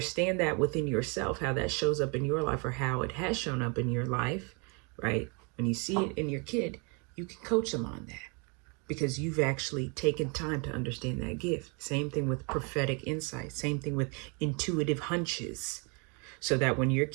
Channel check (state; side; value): quieter; left; 33.3 dB